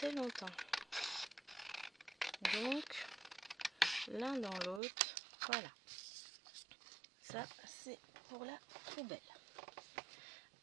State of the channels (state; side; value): drops out; left; at 4.8 s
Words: longtemps. Donc, l'un dans l'autre, voilà. Ça, c'est pour la poubelle.